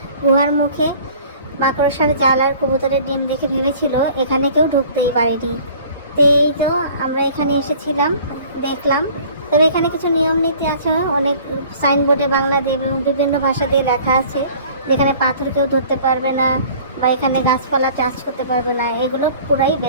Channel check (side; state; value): both; inverted; correlation -0.49